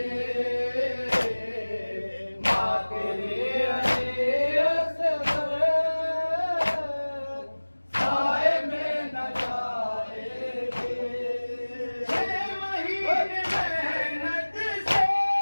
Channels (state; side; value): inverted; both; correlation -1.00